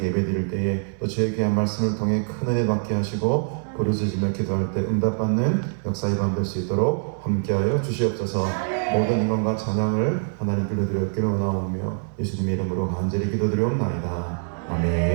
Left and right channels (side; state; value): left; silent; 62 dB below the other